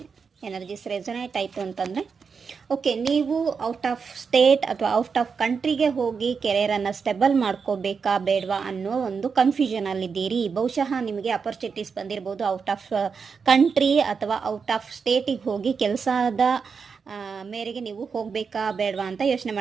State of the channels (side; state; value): left; quieter; 5.7 dB